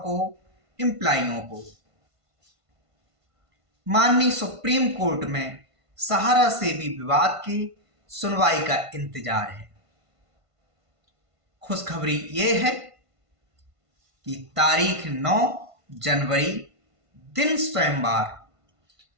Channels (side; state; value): left; late; 1.5 ms